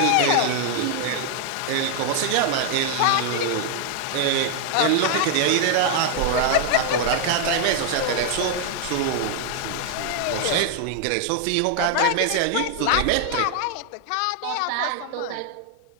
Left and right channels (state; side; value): different; both; correlation 0.00